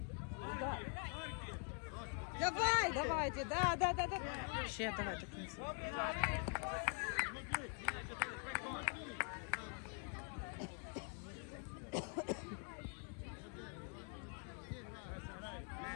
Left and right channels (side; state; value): right; quieter; 39.9 dB